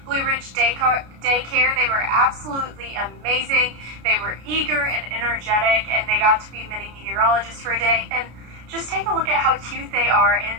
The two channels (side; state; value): left; late; 33 ms